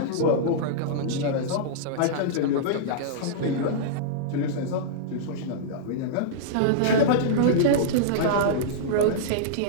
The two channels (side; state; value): both; different; correlation -0.03